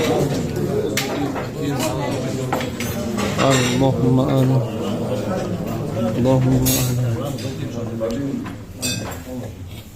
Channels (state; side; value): identical; both; correlation 1.00